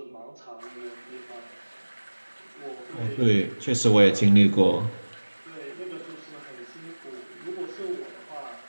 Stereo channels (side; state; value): both; inverted; correlation -1.00